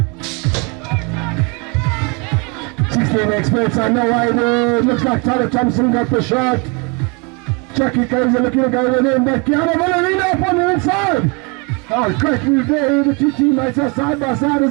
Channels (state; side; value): quieter; left; 30.9 dB